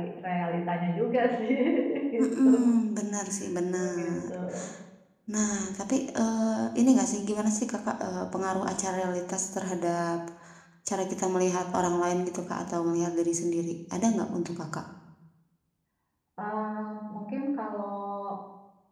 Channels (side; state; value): both; identical; correlation 1.00